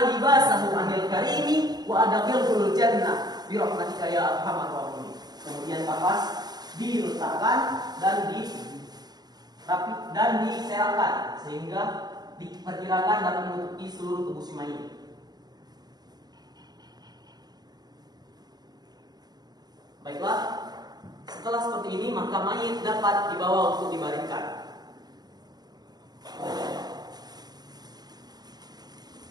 libasahu anil karimi wa adkhilhul jannah bi rahmatika ya arhamar rahimin. Kemudian kapas diletakkan dan diserahkan sehingga diperkirakan dapat menutupi seluruh tubuh si mayit. Baiklah, setelah seperti ini maka mayit dapat dibawa untuk dibaringkan.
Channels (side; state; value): left; late; 0.19 ms